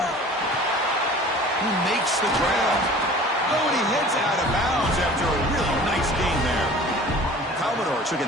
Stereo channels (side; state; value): both; normal; correlation 0.44